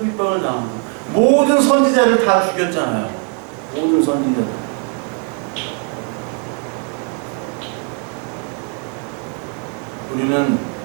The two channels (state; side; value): quieter; left; 36.2 dB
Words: 핍박을 당하고, 모든 선지자를 다 죽였잖아요. 모든 선지자들. 우리는